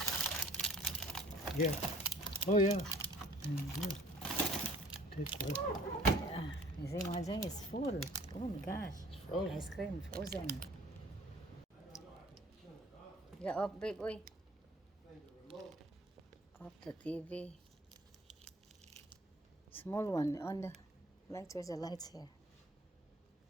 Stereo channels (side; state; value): both; normal; correlation 0.50